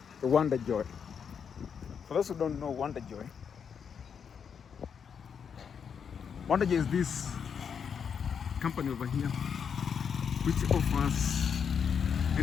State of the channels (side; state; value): right; quieter; 7.0 dB